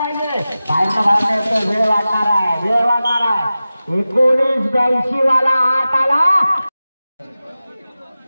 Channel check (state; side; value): inverted; both; correlation -0.95